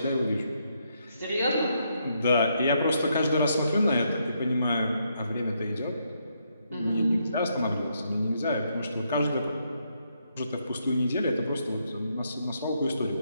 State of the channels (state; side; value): inverted; both; correlation -0.77